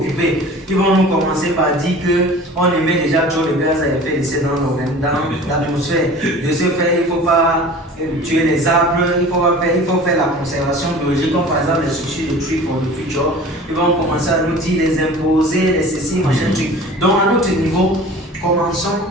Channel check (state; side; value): normal; both; correlation 0.42